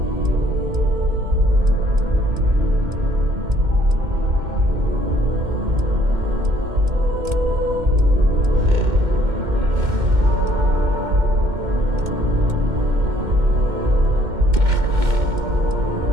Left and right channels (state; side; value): late; left; 2.1 ms